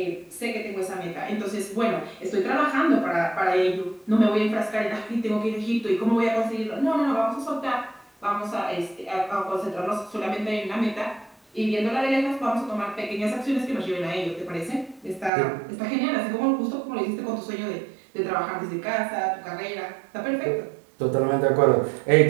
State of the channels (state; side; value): drops out; left; at 15.3 s